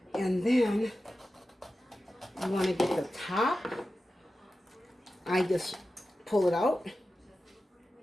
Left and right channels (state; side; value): normal; both; correlation 0.93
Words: And then you want to get the top. I just pull it out.